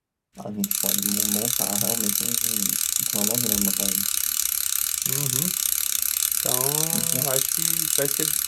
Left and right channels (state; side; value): identical; both; correlation 1.00